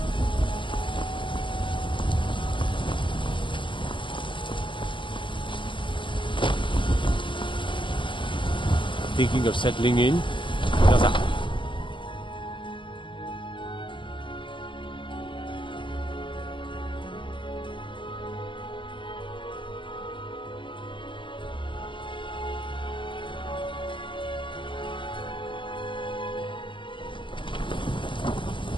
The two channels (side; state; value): right; late; 0.24 ms